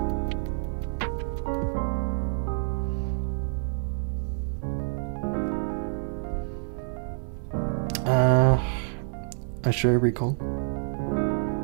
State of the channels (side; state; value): left; silent; digital silence